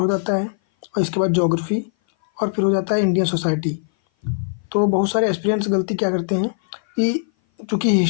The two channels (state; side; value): silent; right; 58 dB below the other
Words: जाता है और इसके बाद ज्योग्राफी और फिर हो जाता है इंडियन सोसाइटी। तो बहुत सारे एस्पिरेंट्स गलती क्या करते हैं कि चूँकि